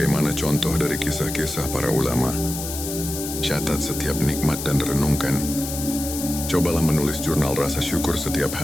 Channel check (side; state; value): left; noise; hiss, 7 dB below the sound